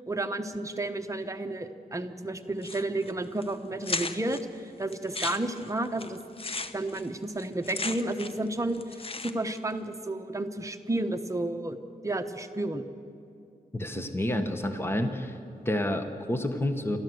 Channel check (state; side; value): normal; both; correlation 0.71